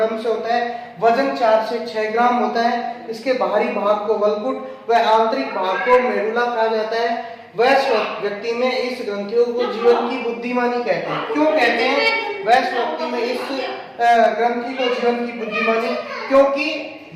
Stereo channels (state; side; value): identical; both; correlation 1.00